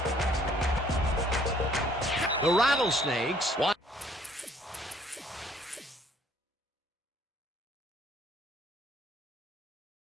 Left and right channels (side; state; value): both; normal; correlation 0.61